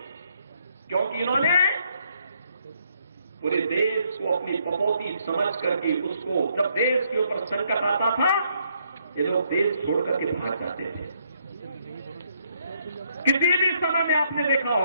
क्योंकि इन्होंने पूरे देश को अपनी बपौती समझ करके उसको जब देश के ऊपर संकट आता था ये लोग देश छोड़ करके भाग जाते थे। किसी भी समय में आपने देखा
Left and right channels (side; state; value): both; inverted; correlation -0.71